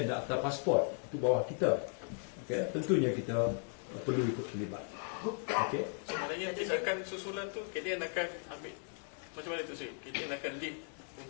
dan Akta Pasport, itu bawah kita. Okay? Tentunya kita perlu ikut terlibat. Okay? Sebenarnya tindakan susulan tu KDN akan ambil macam mana tu sih? KDN akan lead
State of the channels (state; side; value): silent; right; 53 dB below the other